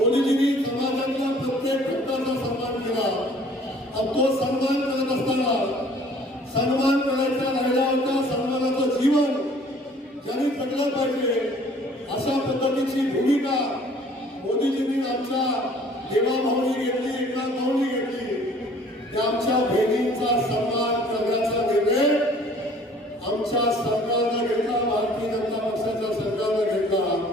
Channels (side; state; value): both; normal; correlation 0.54